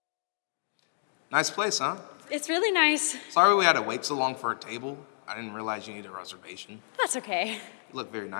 Nice place, huh? It's really nice. Sorry we had to wait so long for a table. I didn't realize you needed a reservation. That's okay. You look very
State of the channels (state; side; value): silent; right; digital silence